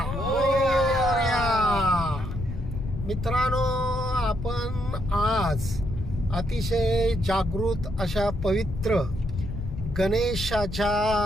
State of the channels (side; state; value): left; noise; rumble, 7 dB below the sound